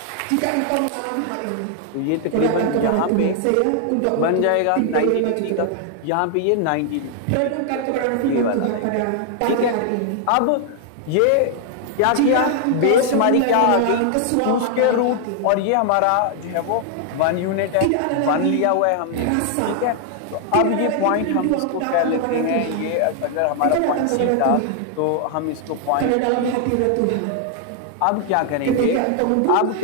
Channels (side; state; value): both; different; correlation 0.00